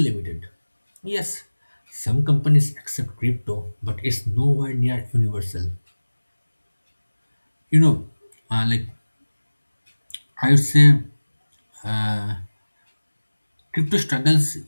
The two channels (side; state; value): both; inverted; correlation -1.00